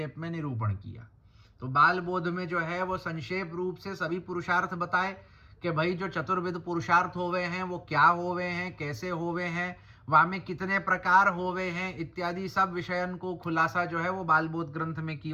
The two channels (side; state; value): both; identical; correlation 1.00